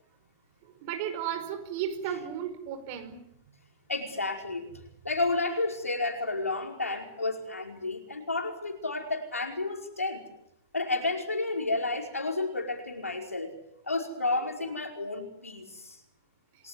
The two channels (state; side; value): inverted; both; correlation -0.52